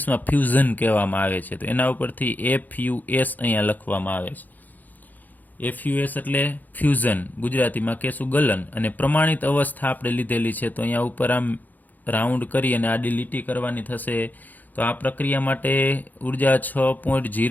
ફ્યુઝન કહેવામાં આવે છે. તો એના ઉપરથી FUS અહીંયા લખવામાં આવે છે. FUS એટલે ફ્યુઝન, ગુજરાતીમાં કહેશું ગલન. અને પ્રમાણિત અવસ્થા આપણે લીધેલી છે, તો અહીંયા ઉપર આમ રાઉન્ડ કરી અને આડી લીટી કરવાની થશે. તો આ પ્રક્રિયા માટે ઉર્જા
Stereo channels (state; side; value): late; right; 0.083 ms